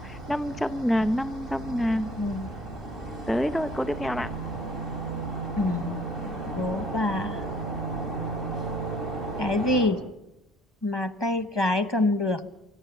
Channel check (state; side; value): normal; both; correlation 0.58